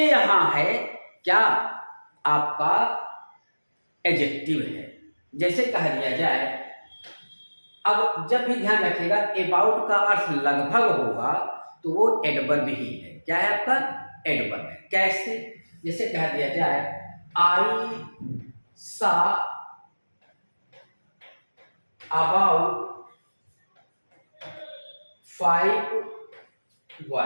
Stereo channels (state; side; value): inverted; both; correlation -1.00